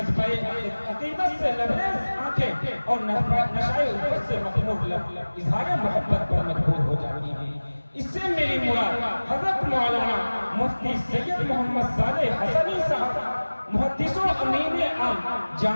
عقیدت سے لبریز آنکھیں اور نشائے الفت سے مخمور لب اظہار محبت پر مجبور ہو جاتی ہیں۔ اس سے میری مراد حضرت مولانا مفتی سید محمد صالح حسنی صاحب محدث و امین عام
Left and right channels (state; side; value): inverted; both; correlation -1.00